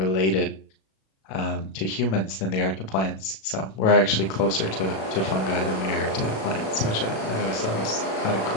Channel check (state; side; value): late; right; 37 ms